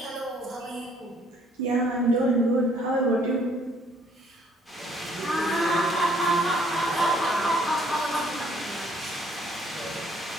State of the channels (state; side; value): normal; both; correlation 0.63